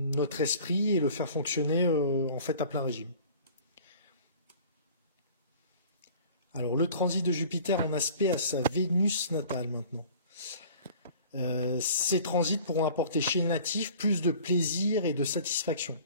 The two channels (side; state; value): both; inverted; correlation -0.47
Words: esprit et le faire fonctionner en fait à plein régime. Alors le transit de Jupiter en aspect à sa Vénus natale maintenant. Ces transits pourront apporter chez le natif plus de plaisir et de satisfaction.